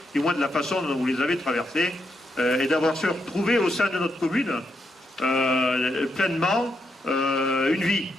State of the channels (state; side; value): normal; both; correlation 0.80